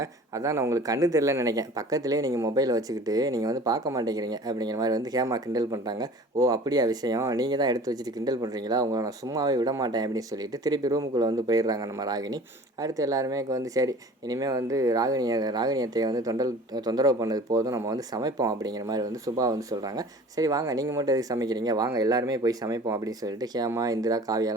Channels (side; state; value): both; normal; correlation 0.44